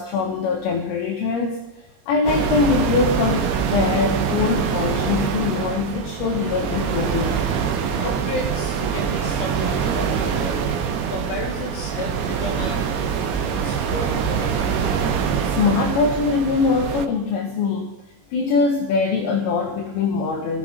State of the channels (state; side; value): late; right; 21 ms